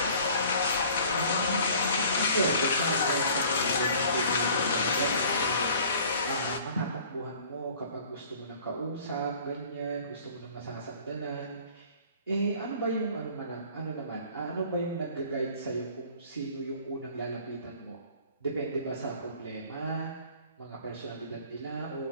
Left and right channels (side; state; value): both; inverted; correlation -0.50